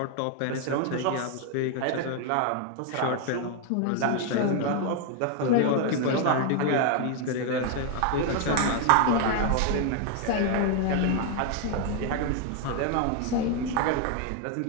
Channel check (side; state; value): both; different; correlation 0.01